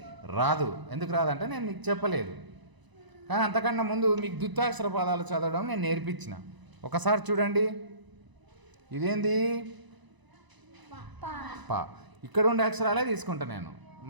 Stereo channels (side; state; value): left; late; 1.0 ms